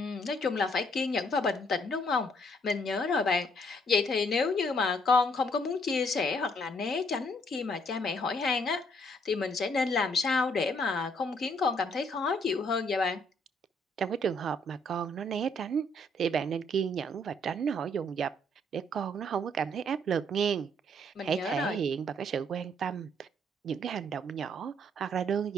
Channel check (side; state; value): both; normal; correlation 0.67